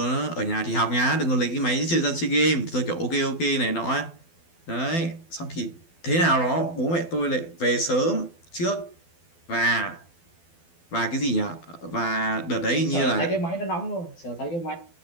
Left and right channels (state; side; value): late; right; 12 ms